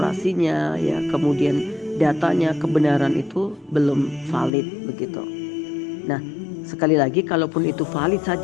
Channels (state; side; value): drops out; right; at 4.5 s